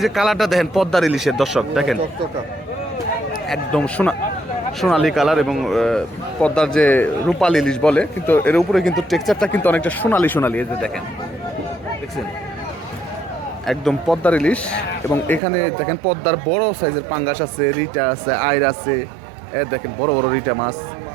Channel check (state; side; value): drops out; left; at 15.4 s